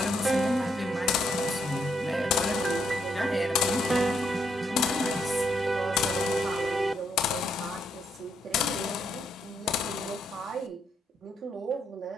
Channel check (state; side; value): normal; both; correlation 0.76